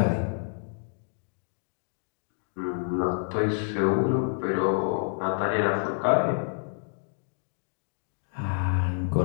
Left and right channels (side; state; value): right; silent; digital silence